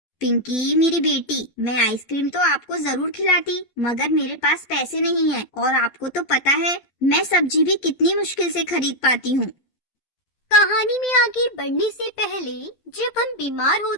पिंकी मेरी बेटी, मैं आइसक्रीम तो आपको जरूर खिलाती, मगर मेरे पास पैसे नहीं है और आपको तो पता है मैं सब्जी भी कितनी मुश्किल से खरीद पाती हूँ। कहानी में आगे बढ़ने से पहले, जब हम बीमार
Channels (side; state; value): right; late; 11 ms